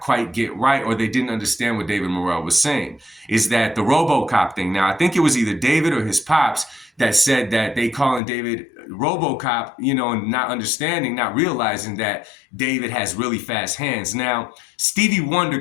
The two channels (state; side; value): drops out; right; at 8.2 s